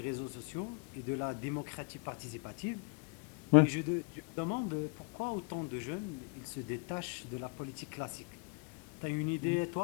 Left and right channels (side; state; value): right; quieter; 32.8 dB